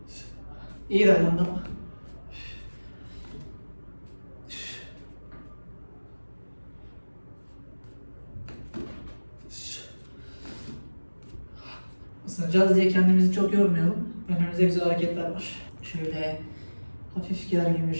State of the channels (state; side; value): inverted; both; correlation -1.00